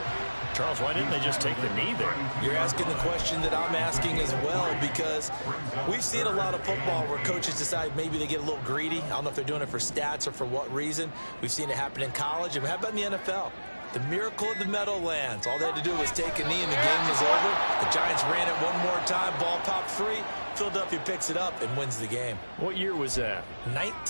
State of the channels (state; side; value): inverted; both; correlation -1.00